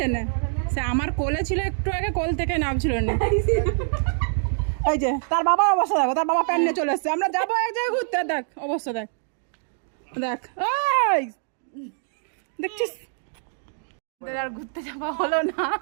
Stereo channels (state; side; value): silent; left; digital silence